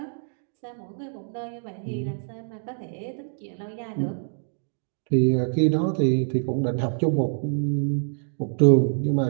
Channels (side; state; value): left; silent; digital silence